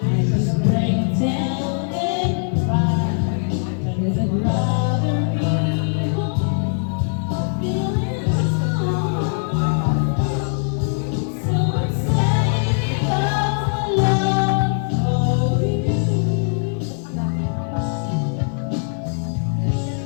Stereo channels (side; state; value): right; silent; 57 dB below the other